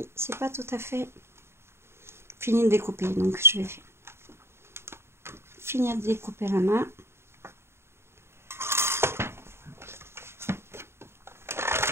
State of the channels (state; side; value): late; left; 0.12 ms